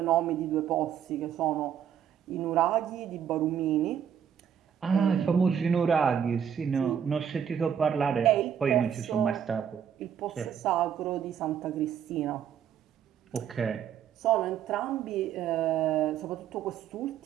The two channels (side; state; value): left; quieter; 8.6 dB